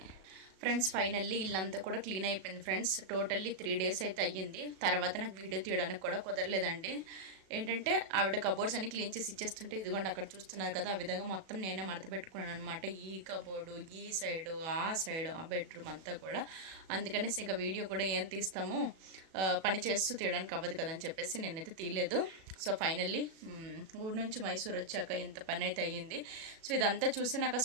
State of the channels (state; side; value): late; left; 37 ms